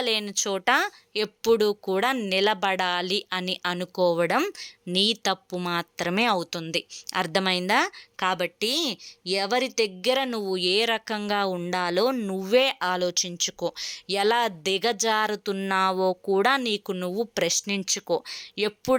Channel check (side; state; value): both; identical; correlation 1.00